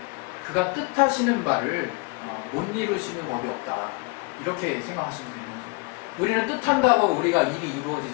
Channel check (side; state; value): right; quieter; 28.8 dB